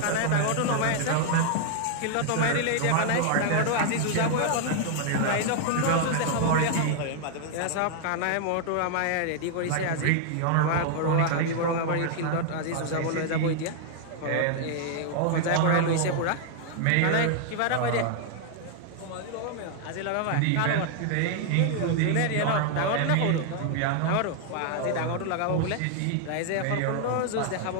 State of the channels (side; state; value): both; different; correlation 0.00